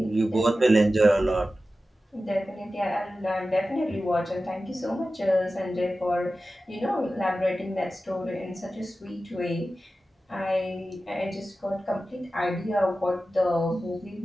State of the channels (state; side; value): normal; both; correlation 0.94